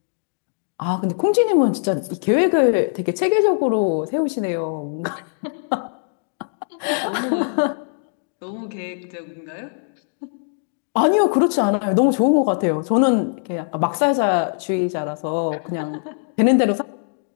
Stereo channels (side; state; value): right; silent; digital silence